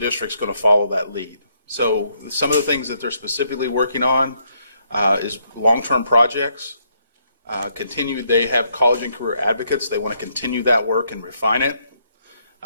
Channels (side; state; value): both; inverted; correlation -0.73